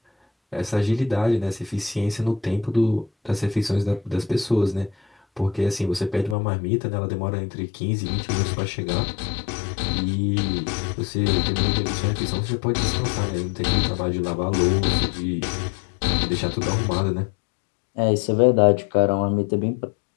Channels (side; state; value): right; drops out; at 6.4 s